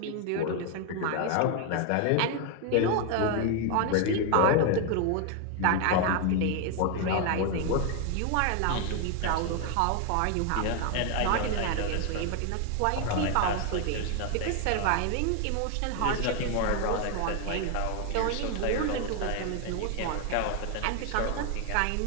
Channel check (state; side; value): different; both; correlation 0.01